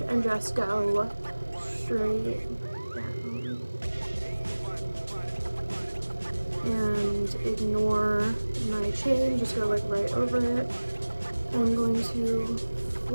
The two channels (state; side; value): inverted; both; correlation -1.00